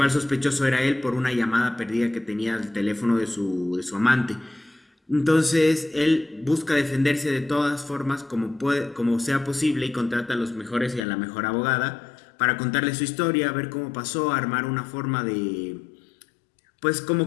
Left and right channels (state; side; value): drops out; right; at 11.0 s